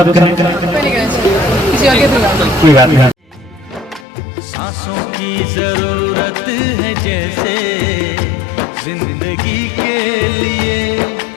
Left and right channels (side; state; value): right; drops out; at 4.0 s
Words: कहें। किसी और के कोई बात नहीं। सांसों की जरूरत है जैसे जिंदगी के लिए,